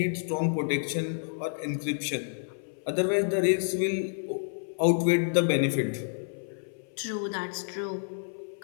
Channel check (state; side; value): silent; right; 58 dB below the other